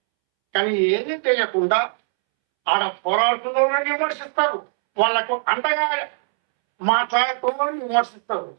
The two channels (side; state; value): left; silent; 65 dB below the other